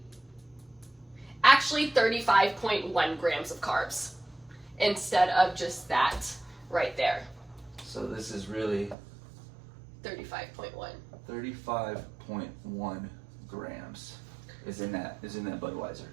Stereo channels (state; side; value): drops out; left; at 9.0 s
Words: actually 35.1 grams of carbs instead of just that right there. So this is really 35.1. 35.1 grams is in that Budweiser.